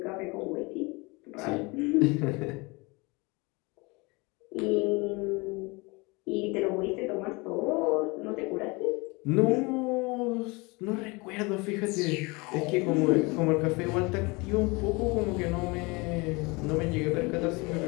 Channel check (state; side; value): quieter; right; 26.4 dB